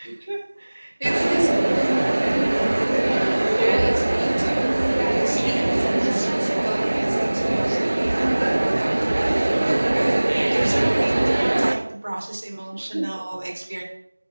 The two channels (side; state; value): both; inverted; correlation -1.00